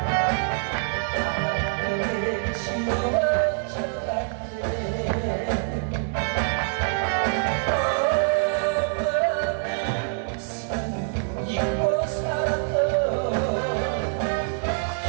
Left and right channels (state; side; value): silent; left; digital silence